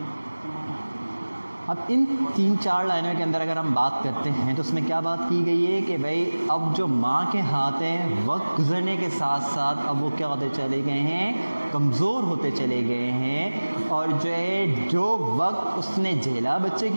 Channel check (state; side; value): inverted; both; correlation -1.00